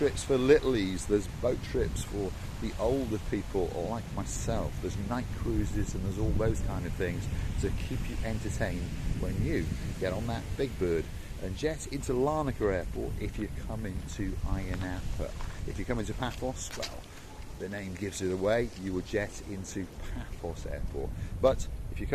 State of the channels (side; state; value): both; identical; correlation 1.00